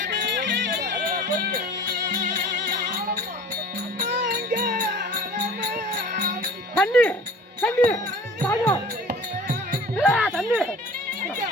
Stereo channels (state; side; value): normal; both; correlation 0.43